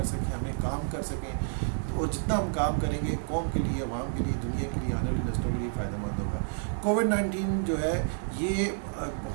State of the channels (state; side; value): silent; left; digital silence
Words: سکیں, ہمیں کام کر سکیں, اور جتنا ہم کام کریں گے قوم کے لیے, عوام کے لیے, دنیا کے لیے, آنے والی نسلوں کے لیے فائدہ مند ہوگا. کووڈ-19 جو ہے یہ